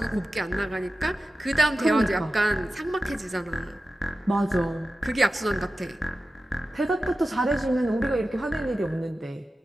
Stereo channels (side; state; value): both; normal; correlation 0.94